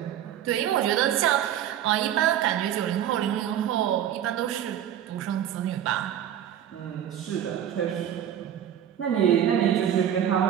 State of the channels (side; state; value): left; quieter; 10.5 dB